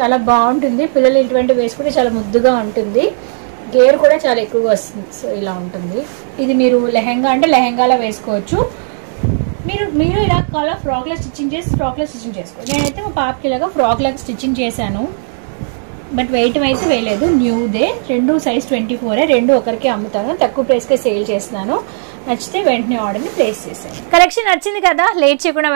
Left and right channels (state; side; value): silent; left; 70 dB below the other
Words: బాగుంటుంది. పిల్లలు ఇటువంటి వేసుకుంటే చాలా ముద్దుగా ఉంటుంది. గేర్ కూడా చాలా ఎక్కువగా వస్తుంది. సో ఇలా ఉంటుంది. ఇది మీరు లెహంగా అంటే లెహంగాలా వేసుకోవచ్చు. మీరు ఇలా కావాలా ఫ్రాక్లో స్టిచ్చింగ్ చేసుకోవచ్చు. నేనైతే మా పాపకి ఇలాగా ఫ్రాక్ లాగా స్టిచ్చింగ్ చేశాను. బట్ వెయిట్ అయితే వేయలేదు, న్యూదే. 2 సైజ్ 24. 2 ఒకరికి అమ్ముతాను, తక్కువ ప్రైస్కే సేల్ చేస్తున్నాను. నచ్చితే వెంటనే ఆర్డర్ని ప్లేస్ చేసేయండి. కలెక్షన్ నచ్చింది కదా, లేట్ చేయకుండా